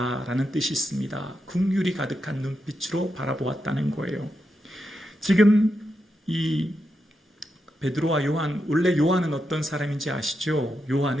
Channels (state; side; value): normal; both; correlation 0.85